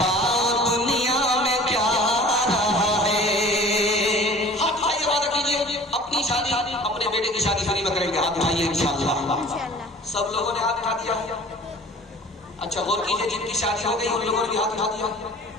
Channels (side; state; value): both; normal; correlation 0.45